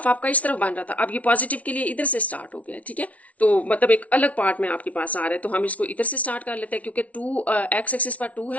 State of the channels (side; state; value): right; late; 0.067 ms